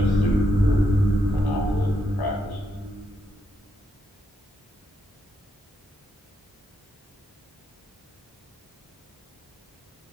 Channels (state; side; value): normal; both; correlation 0.80